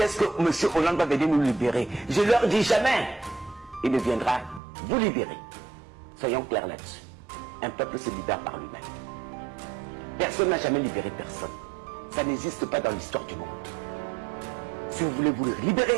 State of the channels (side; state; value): left; drops out; at 4.6 s